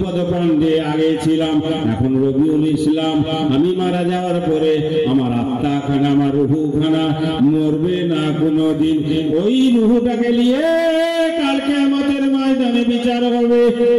পান্ডে আগে ছিলাম, এখন রবিউল ইসলাম। আমি মারা যাওয়ার পরে আমার আত্মা খানা, আমার রুহু খানা মরবে না কোনোদিন। ওই রুহুটাকে নিয়ে কালকে আমাদের ময়দানে বিচার হবে।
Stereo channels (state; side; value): identical; both; correlation 1.00